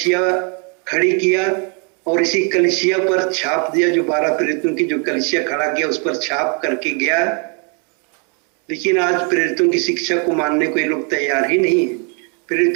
खड़ी किया और इसी कलीसिया पर छाप दिया, जो 12 प्रेरितों की जो कलीसिया खड़ा किया उस पर छाप करके गया। लेकिन आज प्रेरितों की शिक्षा को मानने को ये लोग तैयार ही नहीं है,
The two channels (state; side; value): quieter; left; 37.9 dB